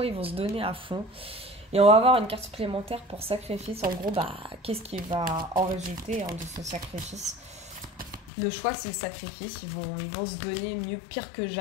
ils vont se donner à fond. Et on va avoir une carte supplémentaire pour sacrifice. En gros, qu'est-ce qui va en résulter hein, de ce sacrifice? Le choix, c'est le sacrifice. Ils vont se donner pire que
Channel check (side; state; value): right; drops out; at 8.3 s